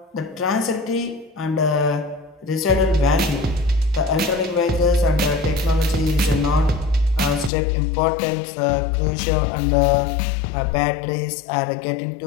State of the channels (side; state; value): right; drops out; at 7.5 s